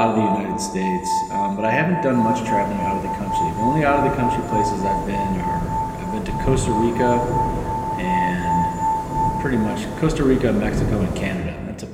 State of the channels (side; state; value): both; identical; correlation 1.00